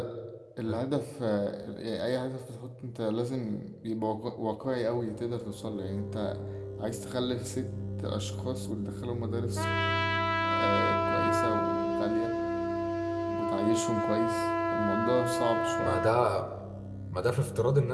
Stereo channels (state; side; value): identical; both; correlation 1.00